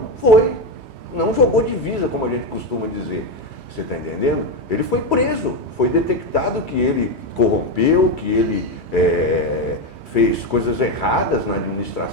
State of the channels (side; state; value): left; late; 3.1 ms